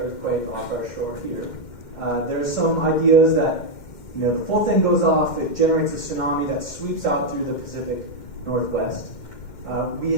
off our shore here. There's some ideas that the full thing goes off, it generates a tsunami that sweeps out through the Pacific Northwest.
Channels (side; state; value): right; late; 2.1 ms